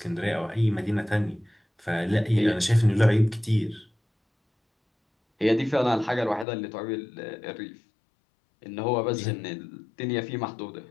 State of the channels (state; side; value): drops out; right; at 6.5 s